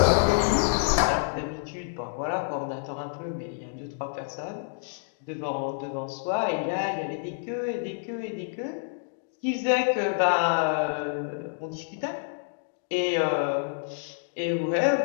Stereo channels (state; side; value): silent; right; digital silence